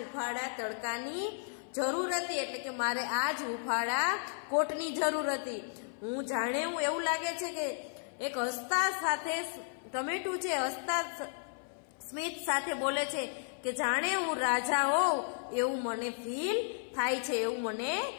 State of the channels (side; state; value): right; silent; 55 dB below the other